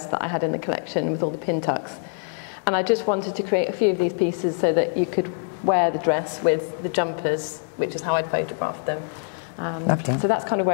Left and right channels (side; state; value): right; silent; digital silence